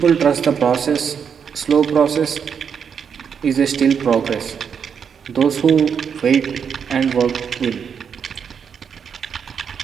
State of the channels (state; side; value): quieter; left; 7.0 dB